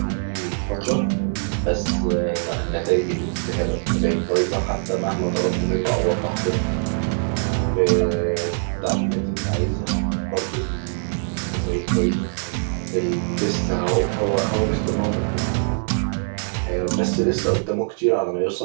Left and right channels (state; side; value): silent; left; digital silence